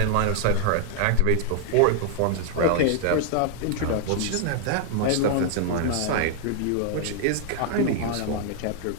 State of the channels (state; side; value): different; both; correlation 0.00